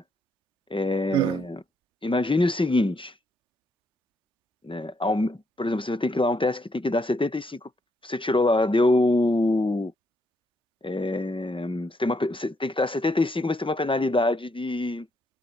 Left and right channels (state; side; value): normal; both; correlation 0.75